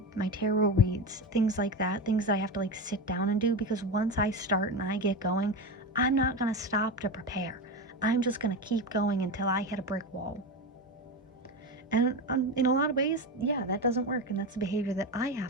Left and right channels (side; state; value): both; normal; correlation 0.19